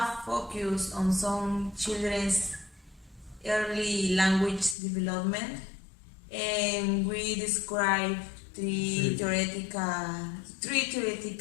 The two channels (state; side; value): drops out; right; at 4.8 s